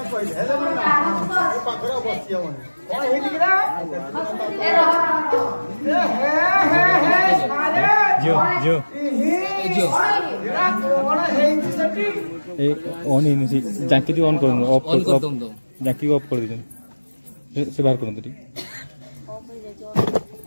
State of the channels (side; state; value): both; inverted; correlation -1.00